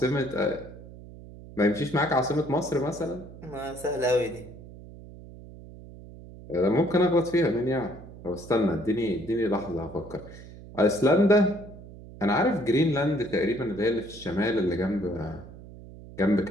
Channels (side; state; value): right; noise; hum, 17 dB below the sound